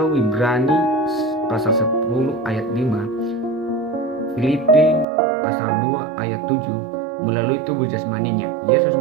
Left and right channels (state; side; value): drops out; left; at 5.1 s